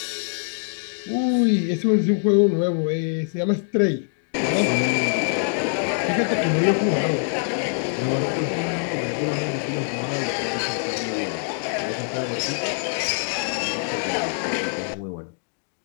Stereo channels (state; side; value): silent; right; digital silence